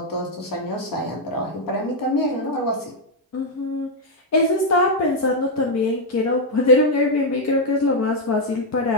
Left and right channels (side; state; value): both; normal; correlation 0.00